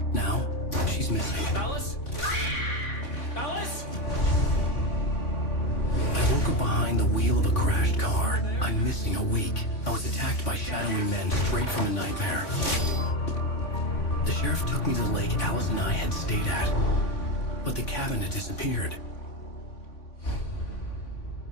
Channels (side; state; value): right; late; 3.6 ms